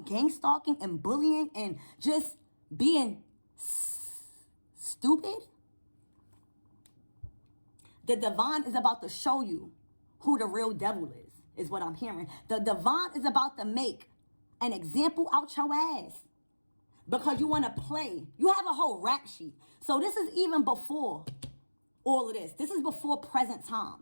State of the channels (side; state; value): both; inverted; correlation -1.00